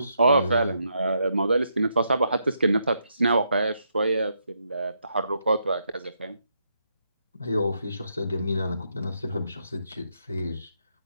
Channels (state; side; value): inverted; both; correlation -0.79